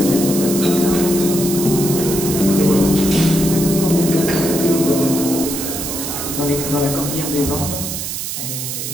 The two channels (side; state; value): right; noise; hiss, 5 dB below the sound